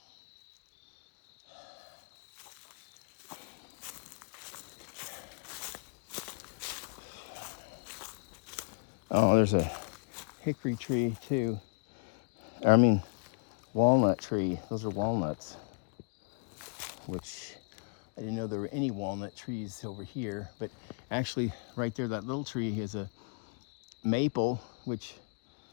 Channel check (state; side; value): quieter; right; 39.3 dB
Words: Oh, there's a hickory tree too. I mean, walnut tree. Those are walnuts, which I didn't know there were any walnut trees over here. But actually, right there, that little tree is a maple, which